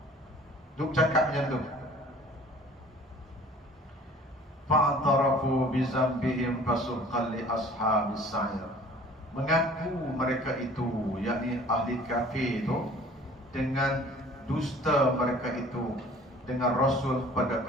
Duk cakap macam tu. Fa'tarafu bizambihim fasuqan li ashabis sa'ir. Mengaku mereka itu, yakni ahli kafir itu, dengan dusta mereka itu dengan Rasul pada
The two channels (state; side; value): normal; both; correlation 0.49